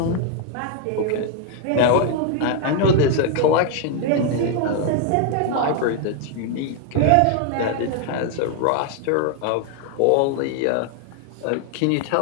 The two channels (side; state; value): both; different; correlation 0.00